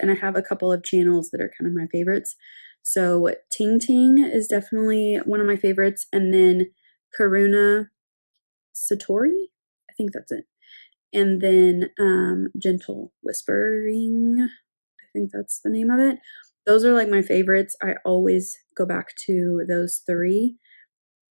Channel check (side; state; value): both; inverted; correlation -1.00